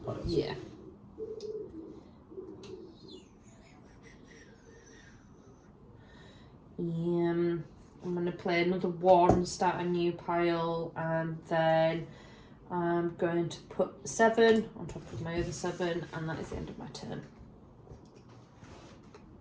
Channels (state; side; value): identical; both; correlation 1.00